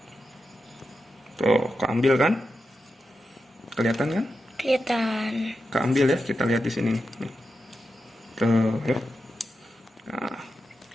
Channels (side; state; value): both; normal; correlation 0.89